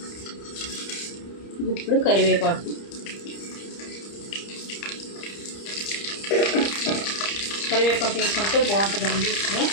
ఇప్పుడు కరివేపాకు. కరివేపాకు వేసుకుంటే బాగుంటుందండి,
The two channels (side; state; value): right; late; 30 ms